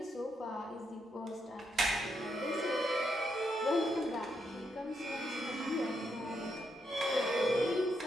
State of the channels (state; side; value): normal; both; correlation 0.80